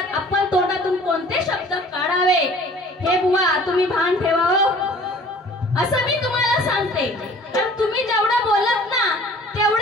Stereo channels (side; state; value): both; normal; correlation 0.49